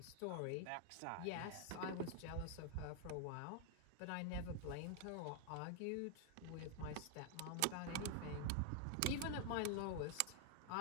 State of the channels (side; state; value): both; different; correlation 0.00